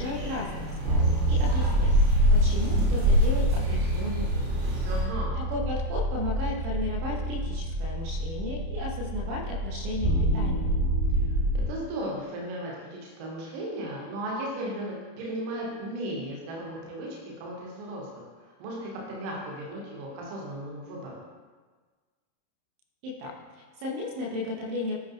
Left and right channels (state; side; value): late; left; 31 ms